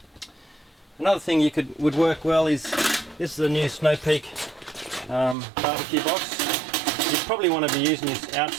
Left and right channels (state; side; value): drops out; left; at 5.4 s